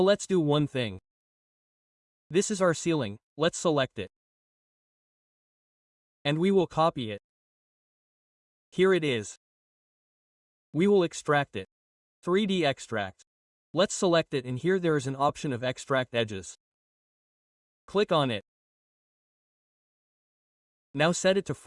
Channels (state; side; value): identical; both; correlation 1.00